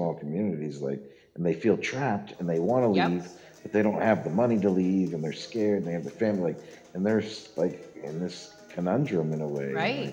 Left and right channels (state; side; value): identical; both; correlation 1.00